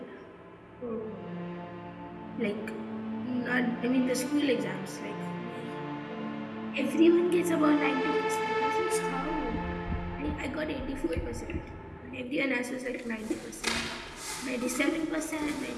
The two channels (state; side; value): identical; both; correlation 1.00